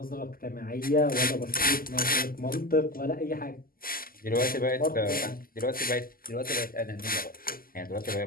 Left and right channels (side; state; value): right; late; 0.42 ms